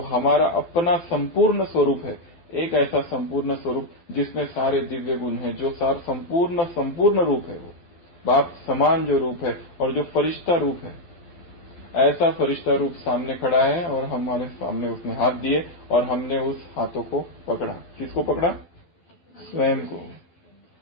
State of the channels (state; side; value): late; right; 12 ms